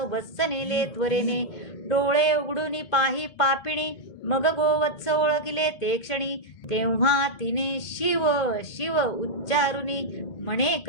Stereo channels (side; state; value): right; late; 2.0 ms